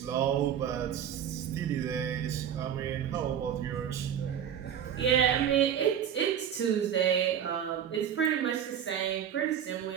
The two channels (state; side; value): quieter; left; 9.1 dB